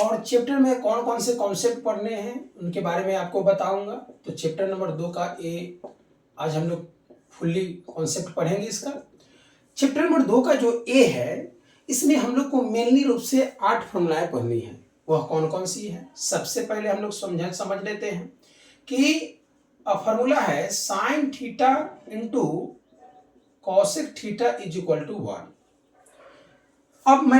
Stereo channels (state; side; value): identical; both; correlation 1.00